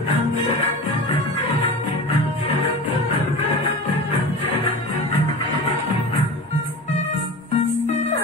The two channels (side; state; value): both; normal; correlation 0.31